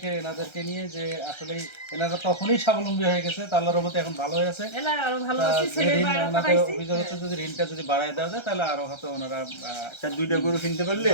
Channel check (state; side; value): late; right; 1.3 ms